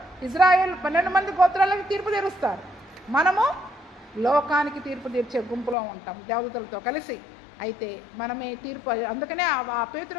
ఇజ్రాయెల్ 12 మంది గోత్రాలకు తీర్పు తీరుస్తారు. మనము లోకానికి తీర్పు తీర్చే గుంపులో ఉంటాం దేవదూతలతో కలిసి. అయితే మనమే తీర్పు. అందుకనే ఆ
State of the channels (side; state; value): right; drops out; at 5.8 s